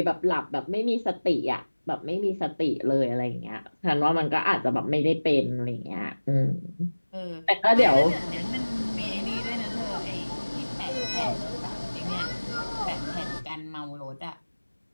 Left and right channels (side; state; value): both; inverted; correlation -1.00